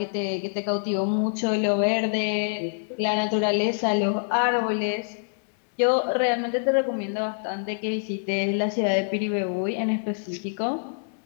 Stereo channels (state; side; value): silent; right; digital silence